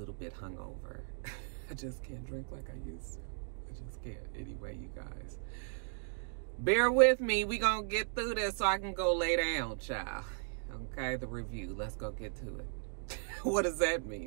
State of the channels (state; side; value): silent; left; digital silence